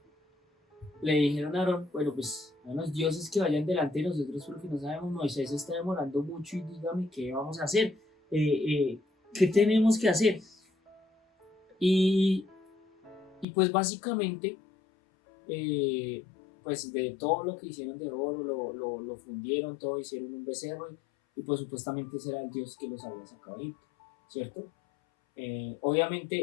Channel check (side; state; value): right; drops out; at 13.5 s